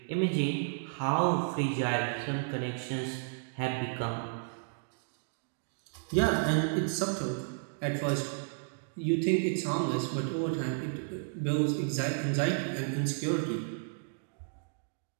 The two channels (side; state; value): left; silent; digital silence